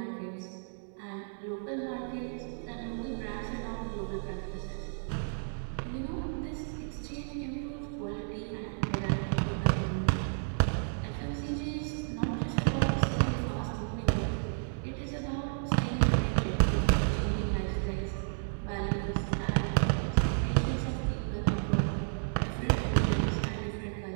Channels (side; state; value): left; silent; digital silence